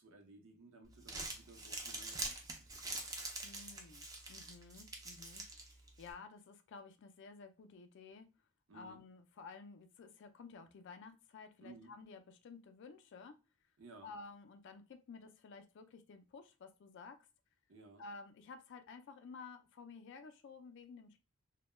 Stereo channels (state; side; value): normal; both; correlation 0.04